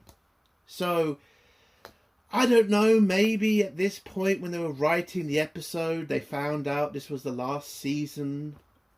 So, I don't know, maybe at this point when they were writing the episode, they found out this was the last season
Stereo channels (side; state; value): both; identical; correlation 1.00